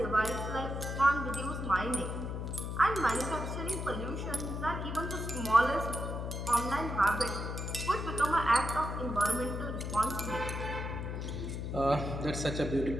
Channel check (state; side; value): noise; left; hum, 4 dB below the sound